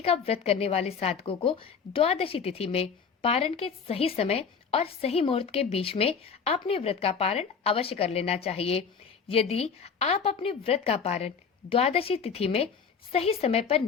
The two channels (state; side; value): quieter; right; 6.1 dB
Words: का व्रत करने वाले साधकों को द्वादशी तिथि में पारण के सही समय और सही मुहूर्त के बीच में अपने व्रत का पारण अवश्य कर लेना चाहिए। यदि आप अपने व्रत का पारण द्वादशी तिथि में सही समय पर